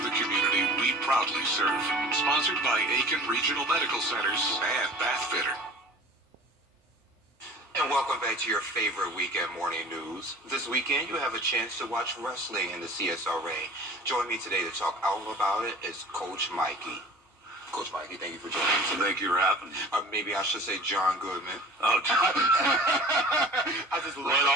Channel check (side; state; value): both; normal; correlation 0.43